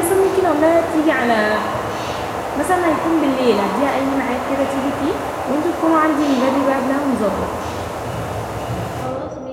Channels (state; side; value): identical; both; correlation 1.00